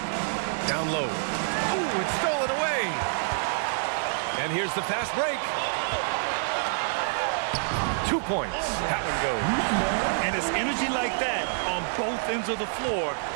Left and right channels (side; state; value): left; silent; digital silence